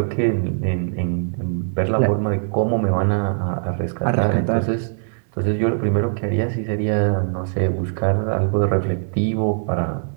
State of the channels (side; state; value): left; silent; digital silence